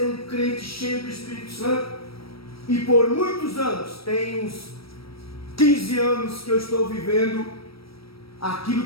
um crente cheio do Espírito Santo, e por muitos anos, tem uns 15 anos que eu estou vivendo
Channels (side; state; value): right; late; 0.75 ms